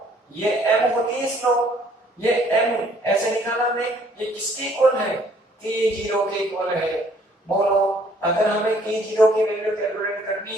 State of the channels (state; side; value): normal; both; correlation 0.61